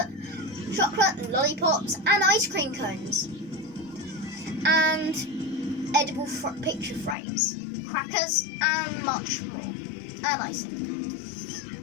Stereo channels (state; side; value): drops out; right; at 7.2 s